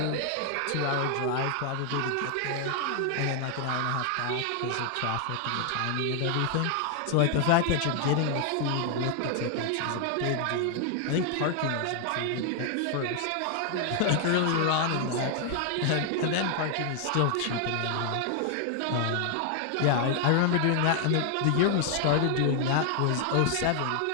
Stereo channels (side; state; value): both; different; correlation 0.00